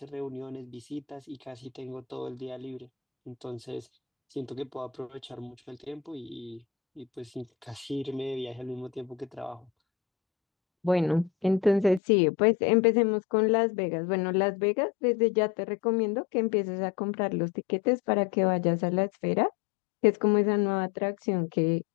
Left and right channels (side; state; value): right; drops out; at 12.0 s